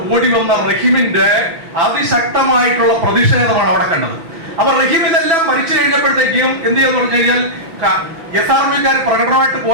ഓടി വന്ന റഹീമിന്റെ അതിശക്തമായിട്ടുള്ള പ്രതിഷേധമാണ് അവിടെ കണ്ടത്. അപ്പൊ റഹീം ഇതെല്ലാം ഭരിച്ചു കഴിഞ്ഞപ്പോഴത്തേക്കും എന്ത് ചെയ്യാന്ന് പറഞ്ഞു കഴിഞ്ഞാൽ, SRMUക്കാർ പ്രകടനമായിട്ട്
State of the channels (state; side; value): late; left; 6.0 ms